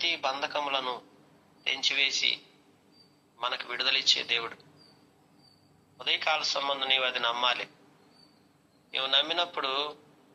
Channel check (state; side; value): identical; both; correlation 1.00